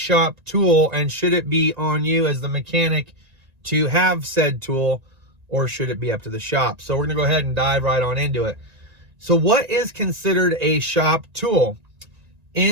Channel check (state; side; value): late; left; 1.9 ms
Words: tool, and should it be on you as the mechanic to have said tool, or should it be up to the shop? So we're going to go ahead and dive right on into it. So what is considered a shop tool?